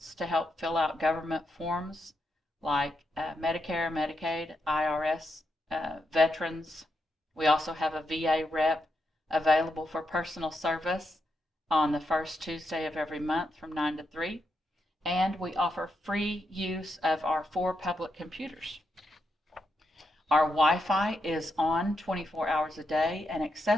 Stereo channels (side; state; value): both; normal; correlation 0.83